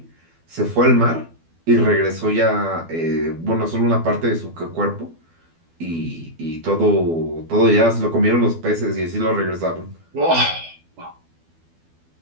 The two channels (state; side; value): late; left; 12 ms